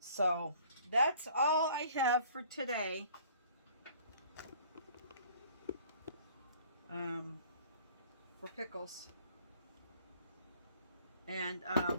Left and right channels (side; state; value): both; inverted; correlation -0.54